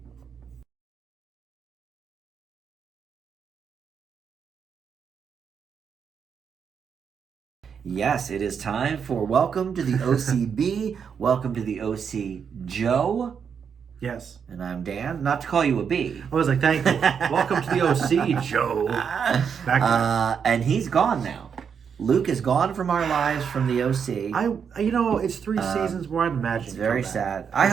Yes, it is time for Welcome to the OCB. Welcome to the OC Joe. Yes. And I'm Dan. Not to call you a B. I was like, thank you. Welcome to the OC, Joe. And he's gone now. Luke is gone from our lives from the OC. It's 3 seasons where I'd imagine. It's very sad. I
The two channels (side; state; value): left; quieter; 6.9 dB